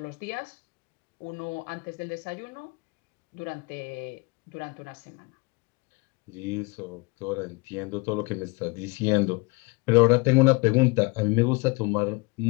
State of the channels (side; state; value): right; quieter; 27.4 dB